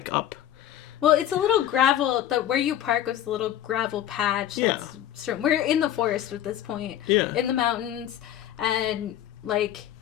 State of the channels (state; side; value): quieter; right; 11.6 dB